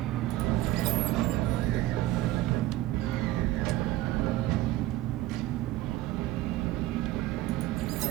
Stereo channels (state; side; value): quieter; left; 15.9 dB